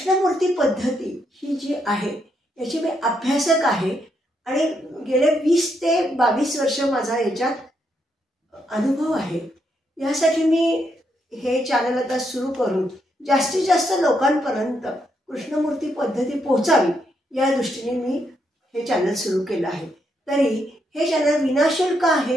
पद्धती ही जी आहे याची मी अभ्यासक आहे आणि गेले 20 ते 22 वर्ष माझा याच्यात अनुभव आहे. यासाठी मी हे चॅनल आता सुरू करून जास्तीत जास्त लोकांपर्यंत कृष्णमूर्ती पद्धती पोहोचावी या दृष्टीने मी हे चॅनल सुरू केलं आहे. तरी हे चॅनल विनाशुल्क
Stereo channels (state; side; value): normal; both; correlation 0.78